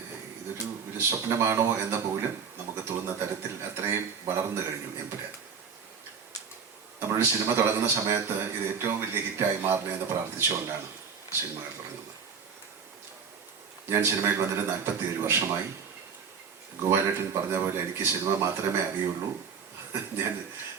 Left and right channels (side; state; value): left; quieter; 6.2 dB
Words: ഒരു സ്വപ്നമാണോ എന്ന പോലും നമുക്ക് തോന്നുന്ന തരത്തിൽ അത്രയും വളർന്നു കഴിഞ്ഞു എമ്പുരാൻ. നമ്മളൊരു സിനിമ തുടങ്ങുന്ന സമയത്ത് ഇത് ഏറ്റവും വലിയ ഹിറ്റായി മാറണമെന്ന് പ്രാർത്ഥിച്ചുകൊണ്ടാണ് സിനിമകൾ തുടങ്ങുന്നത്. ഞാൻ സിനിമയിൽ വന്നിട്ട് 47 വർഷമായി. ഗോപാലേട്ടൻ പറഞ്ഞ പോലെ എനിക്ക് സിനിമ മാത്രമേ അറിയുള്ളൂ. ഞാൻ